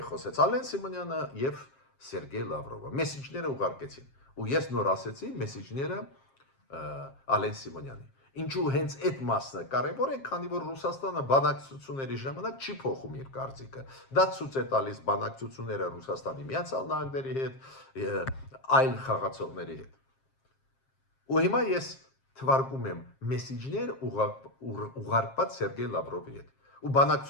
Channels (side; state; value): right; late; 7.5 ms